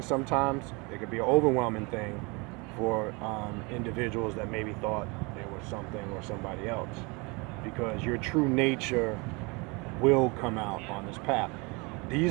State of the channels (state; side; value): quieter; left; 28.3 dB